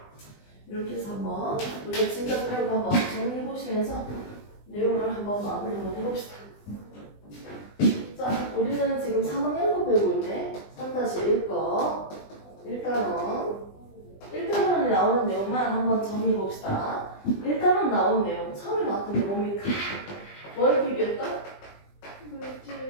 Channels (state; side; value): late; right; 20 ms